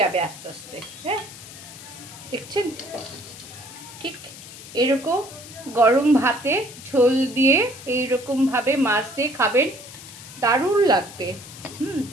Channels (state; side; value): noise; left; hiss, 16 dB below the sound